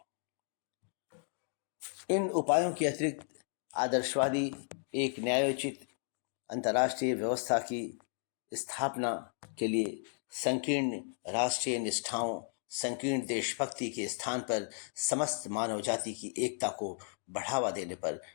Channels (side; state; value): right; silent; 55 dB below the other